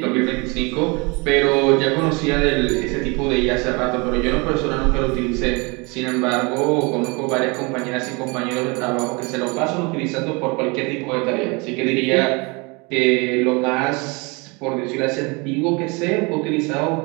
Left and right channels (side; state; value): left; quieter; 28.4 dB